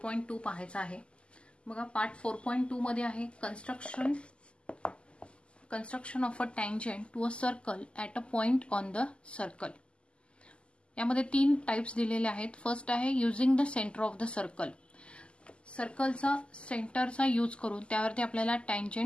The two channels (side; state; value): right; late; 0.052 ms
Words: पाहायचा आहे। बघा, पार्ट 4.2 मध्ये आहे construction of a tangent to a circle at a point on the circle. यामध्ये तीन टाइप्स दिलेले आहेत। फर्स्ट आहे using the centre of the circle. सर्कलचा सेंटरचा यूज करून त्यावरती आपल्याला